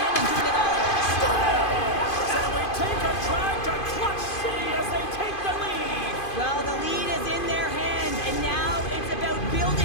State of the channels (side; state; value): right; late; 2.5 ms